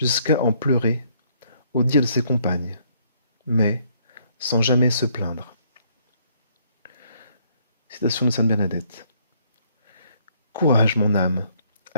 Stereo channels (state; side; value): inverted; both; correlation -0.68